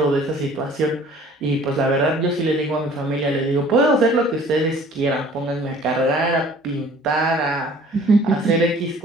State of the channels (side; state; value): both; normal; correlation 0.51